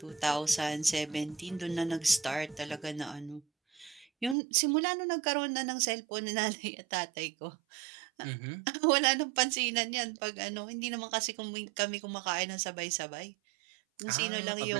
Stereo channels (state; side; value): drops out; left; at 4.4 s